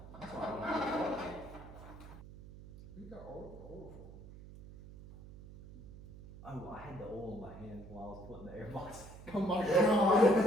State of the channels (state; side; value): noise; right; hum, 16 dB below the sound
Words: You got oil. Oh, I had the oil in my hand while I was putting the airbox. Oh my